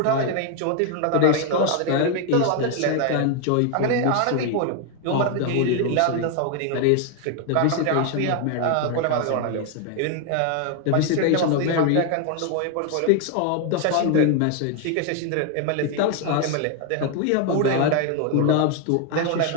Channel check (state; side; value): different; both; correlation 0.01